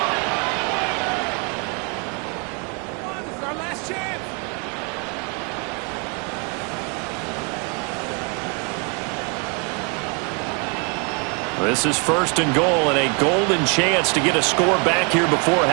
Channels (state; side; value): quieter; left; 35.3 dB